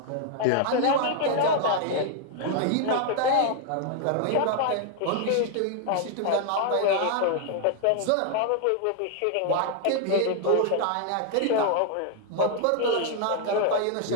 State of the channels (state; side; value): different; both; correlation 0.00